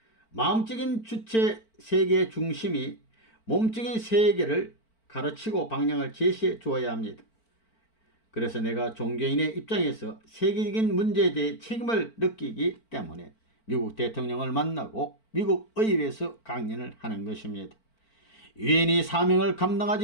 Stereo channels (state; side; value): late; right; 4.5 ms